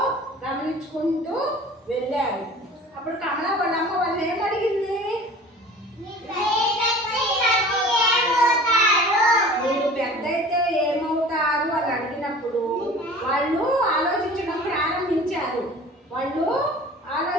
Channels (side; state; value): both; normal; correlation 0.43